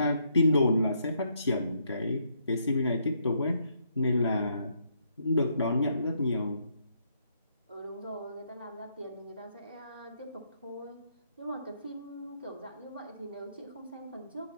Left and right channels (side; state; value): both; inverted; correlation -0.74